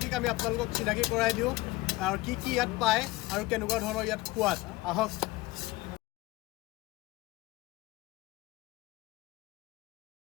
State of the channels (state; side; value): quieter; right; 20.2 dB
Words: আমি আপোনালোকক চিনাকি কৰাই দিওঁ, আৰু কি কি ইয়াত পায় আৰু কেনেকুৱা ধৰণৰ ইয়াত সোৱাদ। আহক।